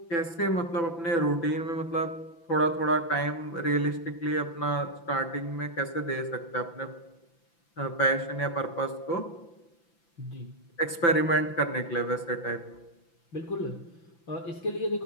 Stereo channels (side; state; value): right; late; 5.9 ms